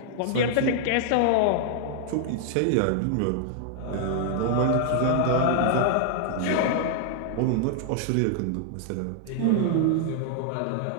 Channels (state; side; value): different; both; correlation -0.01